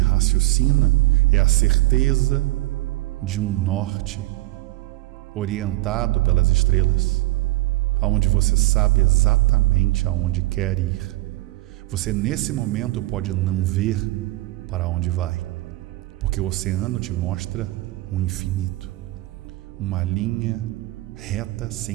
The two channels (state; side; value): quieter; left; 19.3 dB